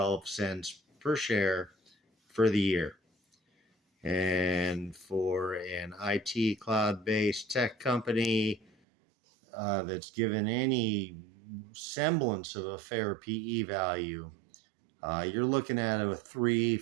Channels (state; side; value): drops out; left; at 8.7 s